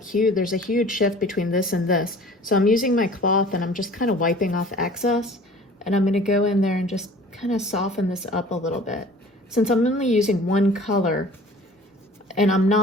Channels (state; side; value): normal; both; correlation 0.47